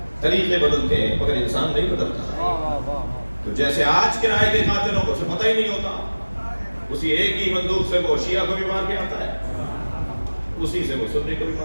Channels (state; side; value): inverted; both; correlation -1.00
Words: طریقے بدلتے ہیں, مگر انسان نہیں بدلتا. تو جیسے آج کرائے کے قاتلوں کو سے پتہ ہی نہیں ہوتا, اسی ایک ہی بندوق سے وہ شیعہ کو بھی مار کے آتا ہے, اسی سے وہ سنی کو بھی